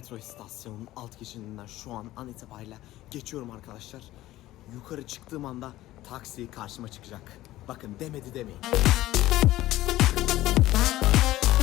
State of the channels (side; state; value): right; quieter; 15.8 dB